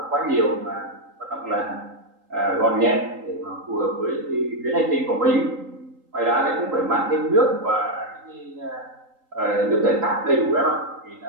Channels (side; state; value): left; late; 3.8 ms